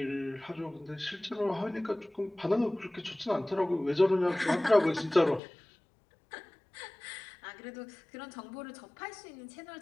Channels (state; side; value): drops out; right; at 5.4 s